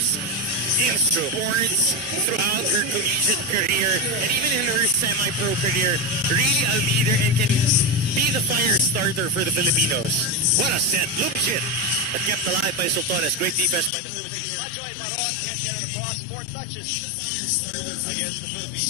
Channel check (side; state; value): right; drops out; at 13.9 s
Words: in sports throughout her collegiate career and even in her semi-pro career. Really a leader and can be the fire starter for the Filipinos. What a set. Lumchit, but kept alive by Sultones. Great defense by the Philippines. Majoy Baron can't get it across. 4 touches against the